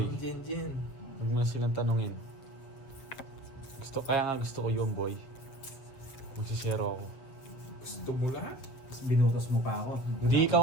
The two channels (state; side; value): late; right; 7.5 ms